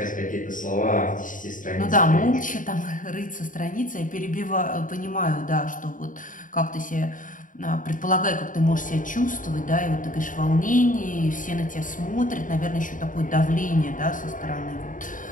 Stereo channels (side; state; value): right; late; 0.38 ms